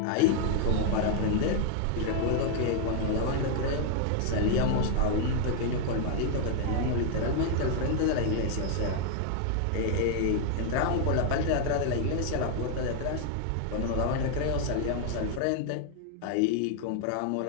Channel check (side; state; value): both; different; correlation 0.00